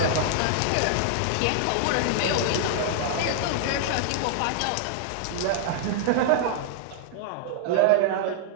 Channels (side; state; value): both; different; correlation -0.01